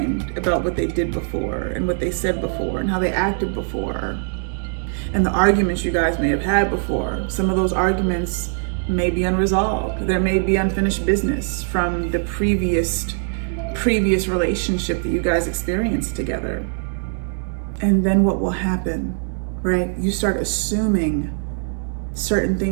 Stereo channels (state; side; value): silent; left; digital silence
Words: about what they did before and what they said before and how they acted before and the arguments you guys may have had before. Some of those arguments may be unresolved. There may be unfinished business from the previous relationship that you guys experienced together. And then what will happen, right? You start assuming certain